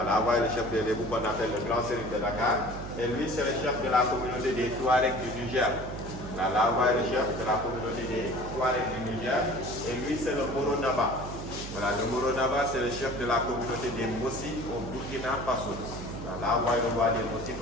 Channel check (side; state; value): right; noise; hum, 9 dB below the sound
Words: là, vous voyez le chef des Lébou qu'on appelle le grand sérine de Dakar. Et lui, c'est le chef de la communauté des Touaregs du Niger. Là, vous voyez le chef de la communauté des Touaregs du Niger. Et lui, c'est le Moro Naba. Voilà, le Moro Naba, c'est le chef de la communauté des Mossi au Burkina Faso. Là, vous voyez le roi des Mossi